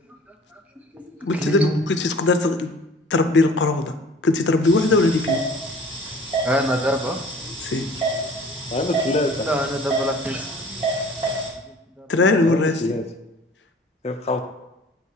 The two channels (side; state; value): both; normal; correlation 0.48